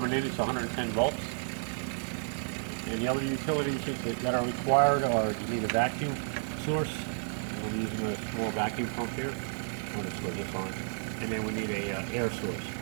in. It's 110 volts. And the other utilities that are required are you need a vacuum source. I'm using a small vacuum pump here. I'm going to switch this on. And then we need a air source.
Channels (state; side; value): silent; left; digital silence